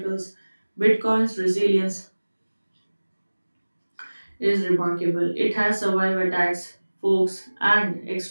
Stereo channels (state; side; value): inverted; both; correlation -1.00